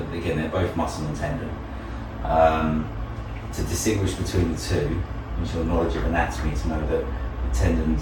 again, they're both muscle and tendon. To distinguish between the two, use your knowledge of anatomy to know that the tendons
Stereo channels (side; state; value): both; identical; correlation 1.00